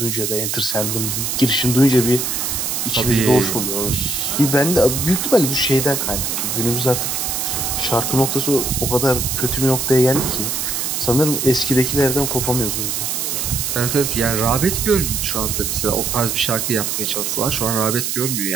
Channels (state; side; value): noise; right; hiss, 1 dB below the sound